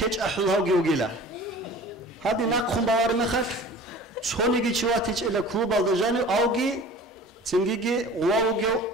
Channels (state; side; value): normal; both; correlation 0.42